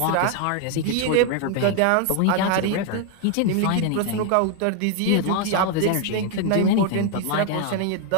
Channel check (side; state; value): both; different; correlation 0.00